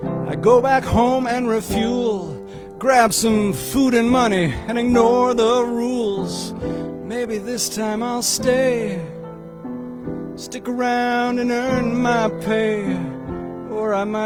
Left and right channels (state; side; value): identical; both; correlation 1.00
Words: I go back home and refuel, grab some food and money and ignore the rules. Maybe this time I'll stay, stick around and earn my pay, or I